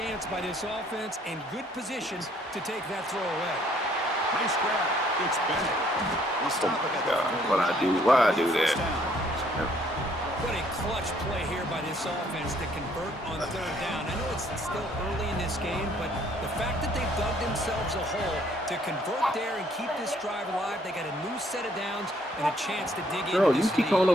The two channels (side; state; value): both; normal; correlation 0.64